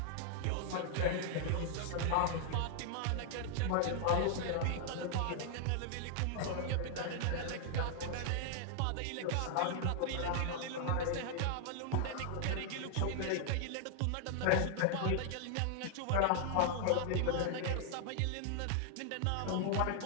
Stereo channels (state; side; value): different; both; correlation 0.00